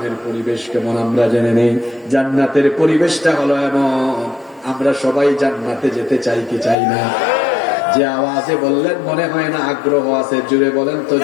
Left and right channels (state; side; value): drops out; right; at 6.8 s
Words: পরিবেশ কেমন আমরা জেনে নেই। জান্নাতের পরিবেশটা হলো এমন, আমরা সবাই জান্নাতে যেতে চাই কি চাই না? যে আওয়াজে বললেন মনে হয় না আগ্রহ আছে, জুড়ে বলেন তো